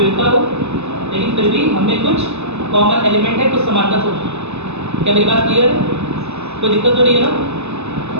हो, लेकिन फिर भी हमें कुछ कॉमन एलिमेंट है, कुछ समानता हो। क्या मेरी बात क्लियर है? कोई दिक्कत तो नहीं है ना?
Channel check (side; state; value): left; late; 0.81 ms